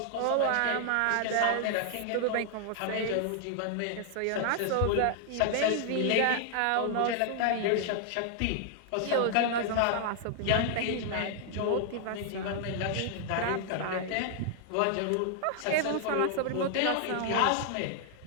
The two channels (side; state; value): both; different; correlation 0.00